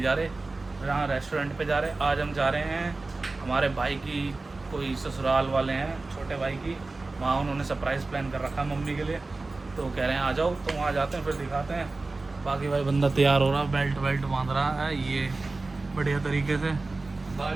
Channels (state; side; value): quieter; left; 3.4 dB